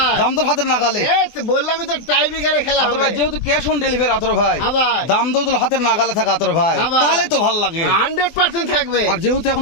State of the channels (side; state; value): right; late; 24 ms